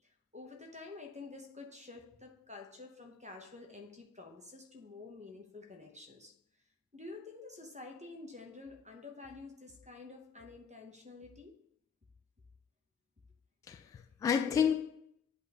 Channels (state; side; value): quieter; right; 6.9 dB